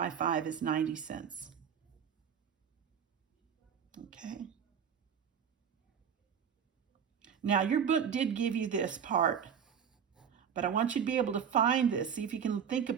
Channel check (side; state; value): left; quieter; 7.7 dB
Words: 5 is 90 cents. Okay. Now, your book did give you this part, but I want you to be able to find this. See if you can think